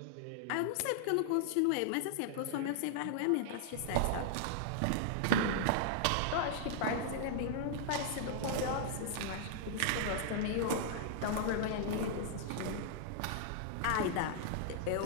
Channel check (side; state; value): both; different; correlation -0.01